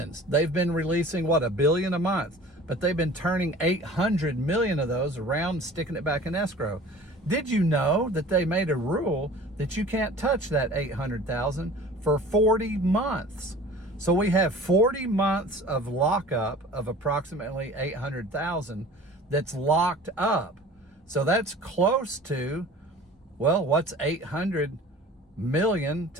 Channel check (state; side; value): normal; both; correlation 0.44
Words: they've been releasing, $1 billion a month, but they've been turning 800 million of those around, sticking it back in escrow. Did you know that they made a rule that you can't touch that 800,000 for 40 months? So we have 40 months of lockup of approximately 800,000 that's locked up. So that's close to, well, what's 800 million